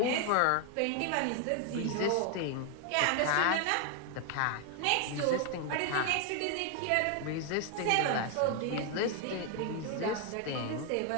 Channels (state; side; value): different; both; correlation 0.00